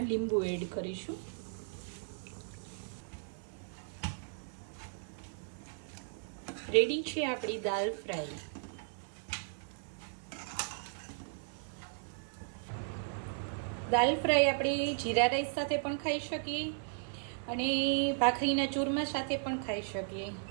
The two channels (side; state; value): left; silent; 54 dB below the other